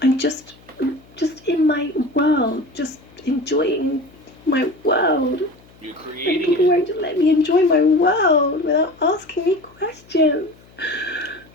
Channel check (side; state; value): left; noise; hum, 26 dB below the sound